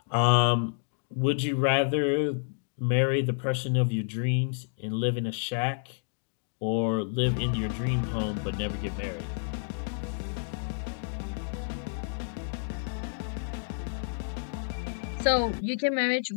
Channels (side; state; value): right; silent; digital silence